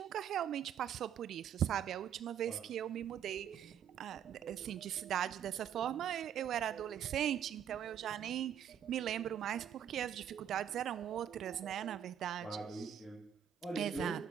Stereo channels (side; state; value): left; quieter; 9.3 dB